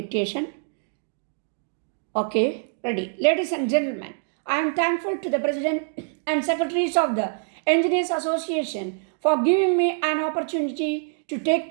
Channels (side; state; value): left; silent; digital silence